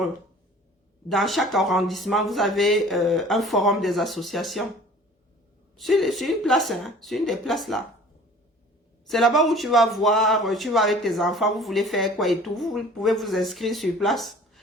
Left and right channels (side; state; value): both; normal; correlation 0.47